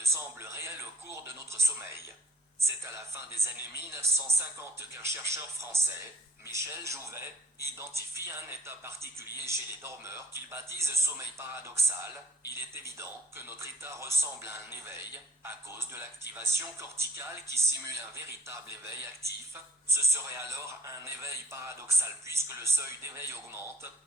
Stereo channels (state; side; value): normal; both; correlation 0.56